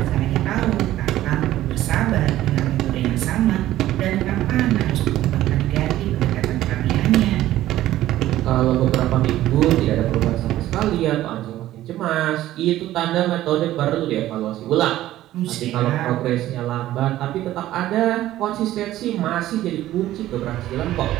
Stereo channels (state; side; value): quieter; left; 14.3 dB